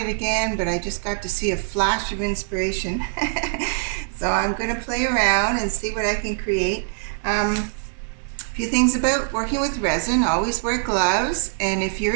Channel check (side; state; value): left; silent; digital silence